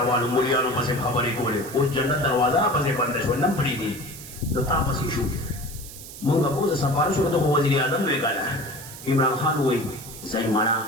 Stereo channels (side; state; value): right; noise; hiss, 14 dB below the sound